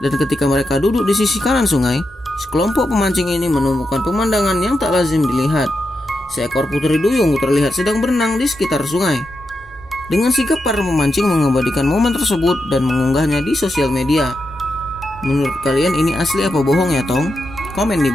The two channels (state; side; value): normal; both; correlation 0.86